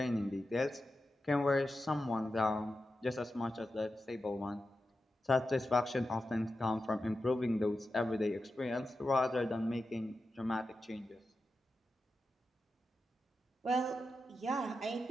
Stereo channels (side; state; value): both; normal; correlation 0.91